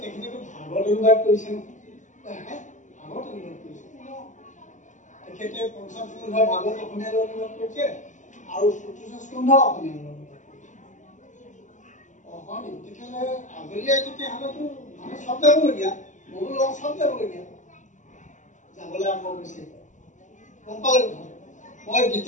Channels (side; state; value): right; late; 0.36 ms